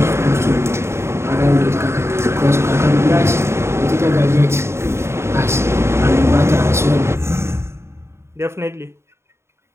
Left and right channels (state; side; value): late; left; 0.13 ms